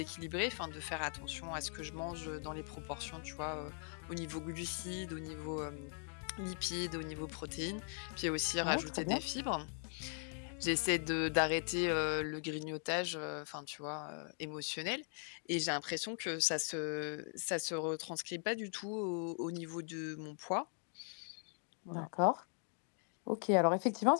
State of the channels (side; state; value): right; silent; 51 dB below the other